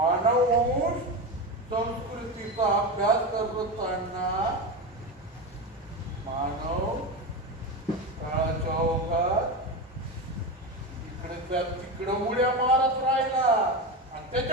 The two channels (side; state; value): both; normal; correlation 0.19